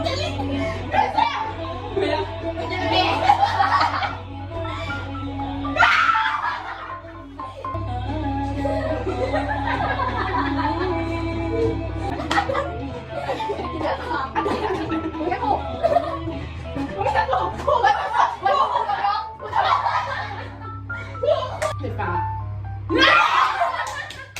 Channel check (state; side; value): identical; both; correlation 1.00